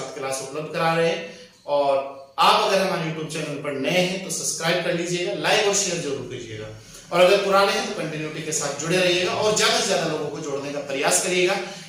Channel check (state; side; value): identical; both; correlation 1.00